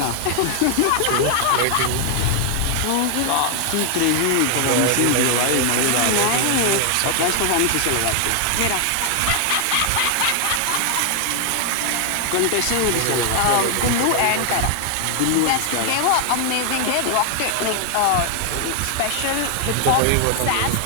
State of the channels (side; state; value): both; different; correlation 0.00